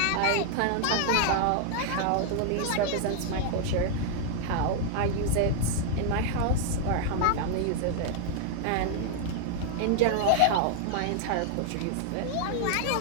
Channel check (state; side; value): different; both; correlation 0.00